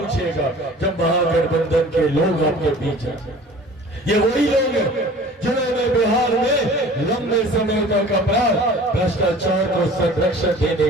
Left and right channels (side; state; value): both; normal; correlation 0.45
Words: जब महागठबंधन के लोग आपके बीच हैं। ये वही लोग हैं जिन्होंने बिहार में लंबे समय तक अपराध भ्रष्टाचार को संरक्षण देने